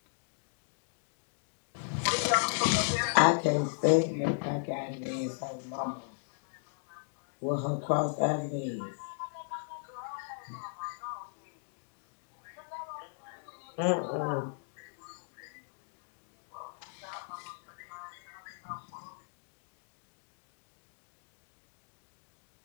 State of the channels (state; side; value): silent; right; digital silence